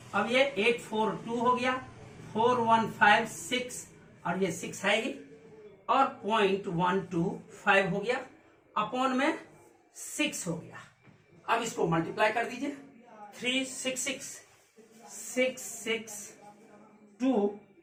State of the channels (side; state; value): both; identical; correlation 1.00